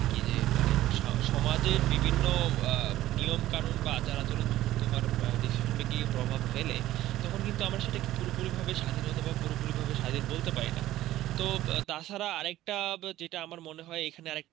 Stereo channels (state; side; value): quieter; left; 14.8 dB